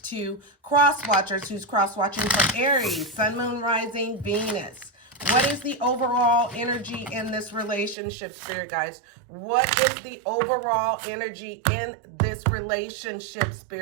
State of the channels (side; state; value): left; drops out; at 8.0 s